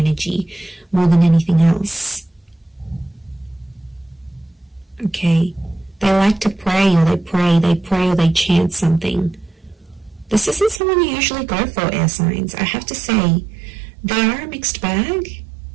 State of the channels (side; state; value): left; drops out; at 10.8 s